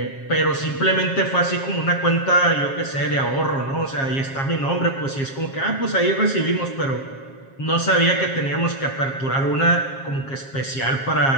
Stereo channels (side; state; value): right; late; 7.4 ms